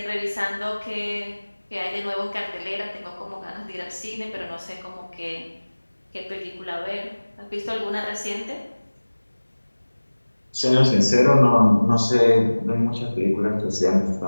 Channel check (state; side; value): inverted; both; correlation -1.00